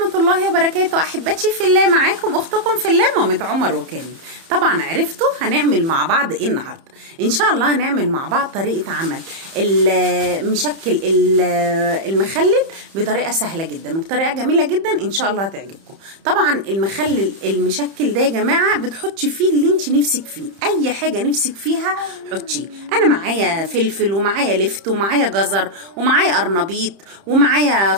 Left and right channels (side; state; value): left; late; 30 ms